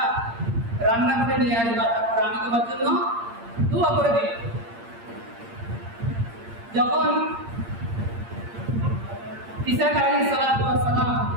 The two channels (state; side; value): late; left; 8.7 ms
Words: রান্না করে নিয়ে আসবা, তারপর আমি তোমার জন্য দোয়া করে দেব। যখন ইসহাক আলাইহিস সালাম